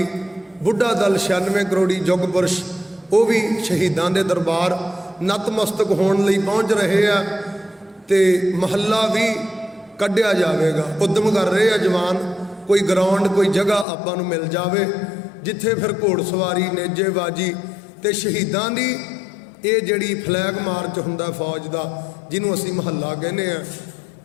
ਬੁੱਢਾ ਦਲ 96 ਕਰੋੜੀ ਯੁੱਗ ਪੁਰਸ਼, ਉਹ ਵੀ ਸ਼ਹੀਦਾਂ ਦੇ ਦਰਬਾਰ ਨਤਮਸਤਕ ਹੋਣ ਲਈ ਪਹੁੰਚ ਰਹੇ ਆ। ਤੇ ਮਹੱਲਾ ਵੀ ਕੱਢਿਆ ਜਾਵੇਗਾ, ਉਦਮ ਕਰ ਰਹੇ ਆ ਜਵਾਨ। ਕੋਈ ਗਰਾਊਂਡ ਕੋਈ ਜਗ੍ਹਾ ਆਪਾਂ ਨੂੰ ਮਿਲ ਜਾਵੇ ਜਿੱਥੇ ਫਿਰ ਘੋੜਸਵਾਰੀ ਨੇਜੇਬਾਜੀ ਤੇ ਸ਼ਹੀਦਾਂ ਦੀ ਇਹ ਜਿਹੜੀ ਫਲੈਗ ਮਾਰਚ ਹੁੰਦਾ ਫੌਜ ਦਾ, ਜਿਹਨੂੰ ਅਸੀਂ ਮਹੱਲਾ ਕਹਿੰਦੇ ਆ,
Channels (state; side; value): drops out; right; at 13.9 s